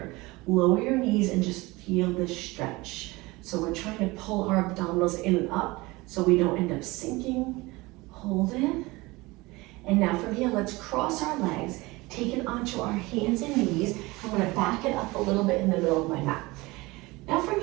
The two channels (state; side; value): quieter; left; 22.2 dB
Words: Lower your knees and just feel this stretch. So we're trying to pull our abdominals in and up so we don't end up sinking. Hold it. And now from here, let's cross our legs, take it onto our hands and knees. I'm gonna back it up a little bit in the middle of my mat. Now from